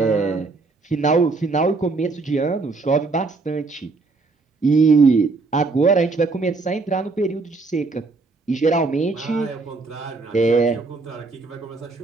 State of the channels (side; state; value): left; quieter; 3.9 dB